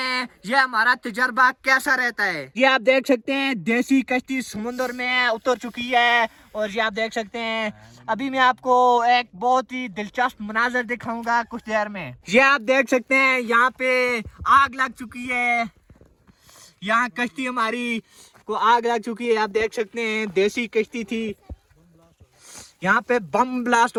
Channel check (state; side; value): identical; both; correlation 1.00